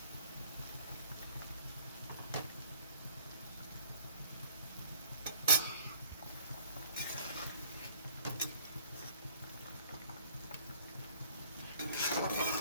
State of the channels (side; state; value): both; inverted; correlation -0.56